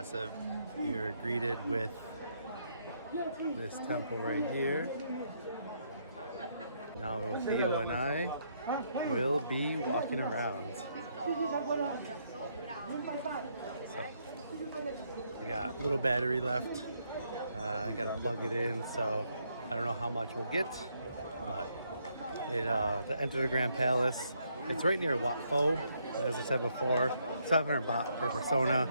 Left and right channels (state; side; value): inverted; both; correlation -0.74